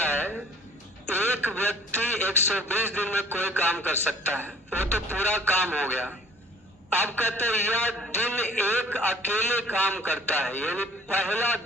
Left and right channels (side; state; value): both; normal; correlation 0.53